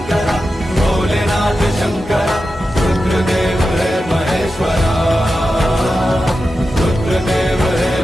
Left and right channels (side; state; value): both; normal; correlation 0.91